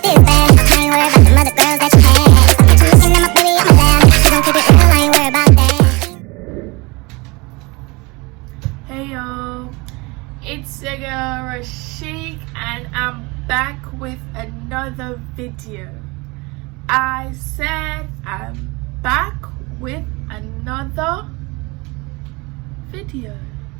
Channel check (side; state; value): left; quieter; 25.5 dB